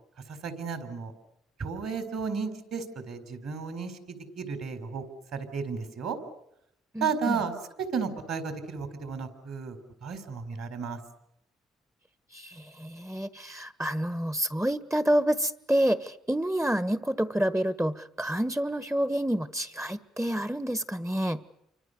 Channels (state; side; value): normal; both; correlation 0.82